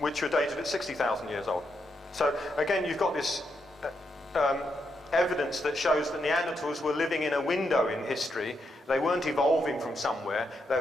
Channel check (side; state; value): both; normal; correlation 0.81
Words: were dated at 60,000 years old. So again, you've got this evidence that shows that Neanderthals were living in a window in history. They weren't evolving from somewhere.